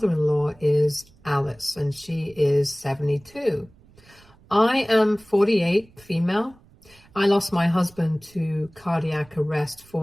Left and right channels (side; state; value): right; noise; rumble, 28 dB below the sound